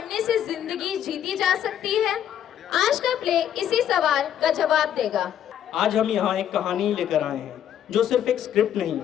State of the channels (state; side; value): quieter; right; 10.1 dB